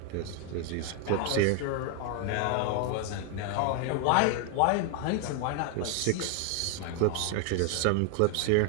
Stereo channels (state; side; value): different; both; correlation 0.00